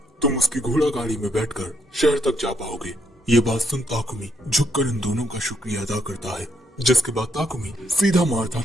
तुम उसकी घोड़ा गाड़ी में बैठकर शहर तक जा पाओगे। ये बात सुन ताकुमी झुककर इन दोनों का शुक्रिया अदा करता है। जिसके बाद ताकुमी सीधा मार्था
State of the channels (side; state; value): both; normal; correlation 0.75